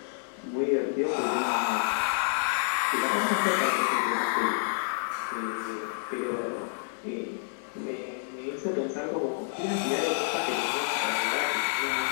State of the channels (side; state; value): right; silent; 59 dB below the other